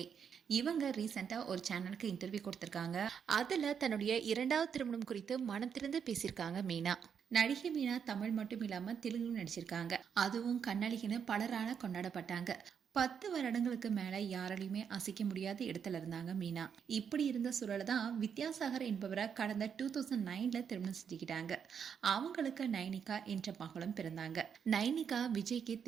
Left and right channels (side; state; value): left; quieter; 7.3 dB